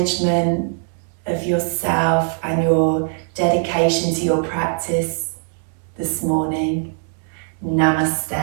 of yourself and your dedication to your practice this morning.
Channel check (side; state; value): left; silent; digital silence